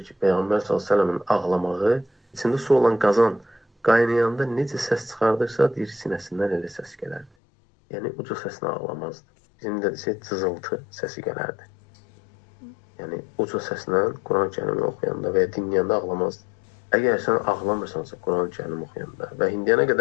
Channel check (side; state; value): right; drops out; at 7.3 s